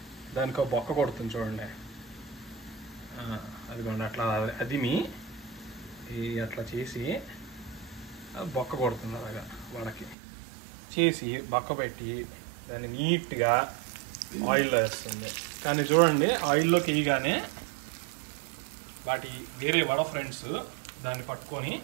దానికి ఒక బొక్క కొడుతుంది చూడండి. అదిగోండి అట్లా అదిమి అట్లా చేసి బొక్క కొడుతుంది, అలాగా వడకి చేసి బొక్క పెట్టి దాన్ని నీట్గా ఆయిల్లో వేస్తుంది. కానీ చూడండి, ఆయిల్లోకి వేయగానే వాటి వేరే వడ ఫ్రెండ్స్ దాన్ని పట్టుకొని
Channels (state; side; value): drops out; left; at 10.2 s